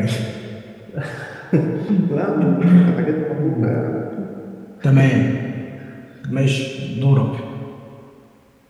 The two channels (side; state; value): both; identical; correlation 1.00